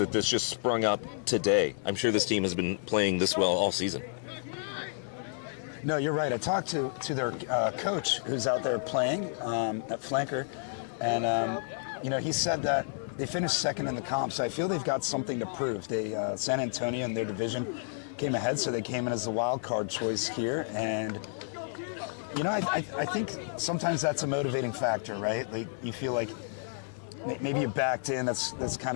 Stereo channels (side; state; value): right; silent; digital silence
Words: this just sprung up today. I'm sure this team has been playing this well all season. No, you're right. I talked to their coach who's out there playing at flanker, and he said that they finished second in the comp, so I feel they've got something to prove. They San Antonio in their division came ahead, so they came in as the wild card choice here, and I think sometimes that's a motivating factor, right? Like you feel like maybe you backed in. That's kind